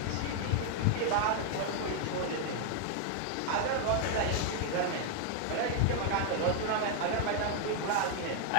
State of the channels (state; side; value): different; both; correlation 0.00